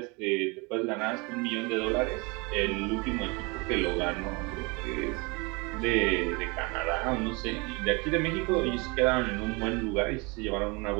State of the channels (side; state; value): left; quieter; 28.3 dB